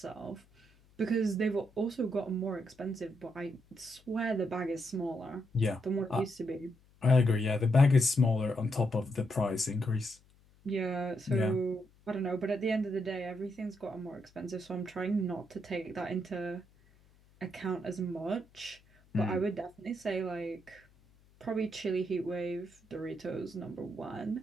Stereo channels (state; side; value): noise; left; hum, 29 dB below the sound